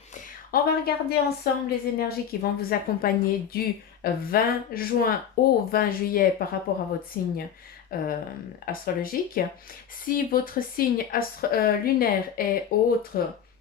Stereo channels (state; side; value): quieter; right; 8.6 dB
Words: On va regarder ensemble les énergies qui vont vous accompagner du 20 juin au 20 juillet par rapport à votre signe euh, astrologique. Si votre signe lunaire est autre